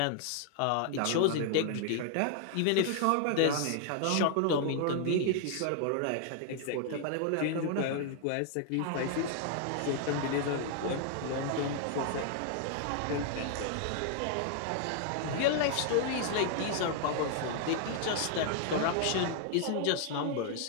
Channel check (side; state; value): both; different; correlation 0.00